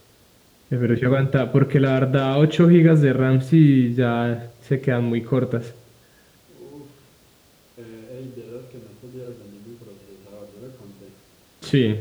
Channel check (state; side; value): identical; both; correlation 1.00